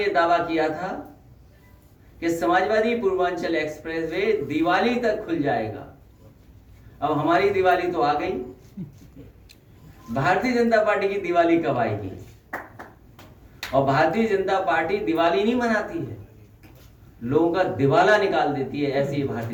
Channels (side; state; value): both; identical; correlation 1.00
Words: यह दावा किया था कि समाजवादी पूर्वांचल एक्सप्रेसवे दिवाली तक खुल जाएगा। अब हमारी दिवाली तो आ गई, भारतीय जनता पार्टी की दिवाली कब आएगी? और भारतीय जनता पार्टी दिवाली नहीं मनाती है, लोगों का दिवाला निकाल देती है, ऐसी